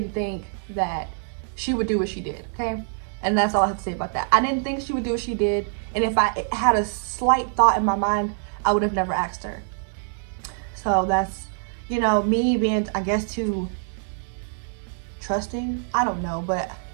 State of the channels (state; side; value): silent; left; digital silence